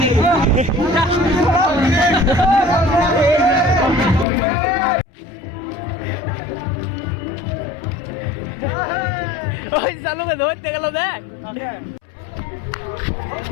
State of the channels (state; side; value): drops out; right; at 4.2 s